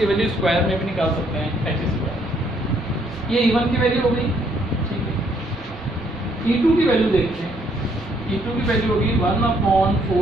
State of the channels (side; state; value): both; normal; correlation 0.68